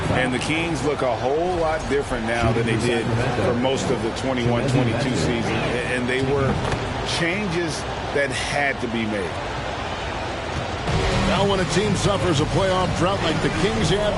And the Kings look a whole lot different now than they did for most of the 21-22 season. And they were changes that had to be made. Now when a team suffers a playoff drought like the Kings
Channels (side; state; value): both; identical; correlation 1.00